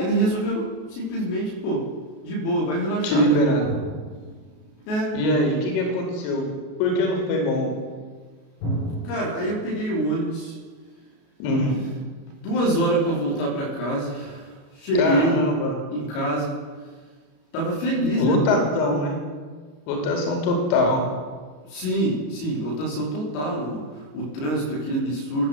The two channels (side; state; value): right; late; 33 ms